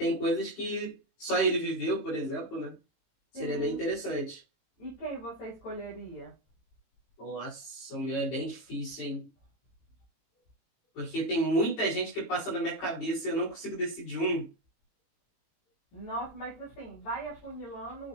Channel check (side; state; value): right; late; 18 ms